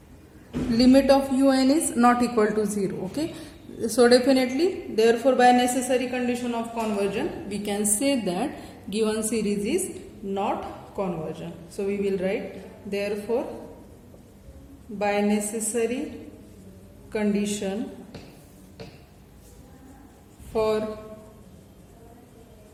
Limit of un is not equal to 0. Okay, so definitely, therefore by necessary condition of conversion, we can say that given series is not convergent. So we will write, therefore by necessary condition for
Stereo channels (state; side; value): identical; both; correlation 1.00